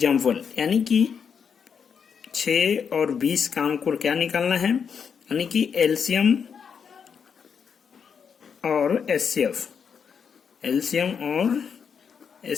यानी कि 6 और 20 का हमको क्या निकालना है, यानी कि एलसीएम और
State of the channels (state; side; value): quieter; right; 6.8 dB